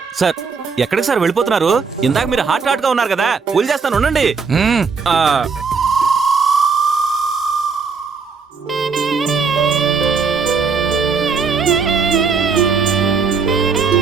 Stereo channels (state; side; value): quieter; left; 5.3 dB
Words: సార్ ఎక్కడికి సార్ వెళ్ళిపోతున్నారు? ఇందాక మీరు హాట్ గా ఉన్నారు కదా, పూలు చేస్తాను ఉండండి. మ్మ్. ఆ,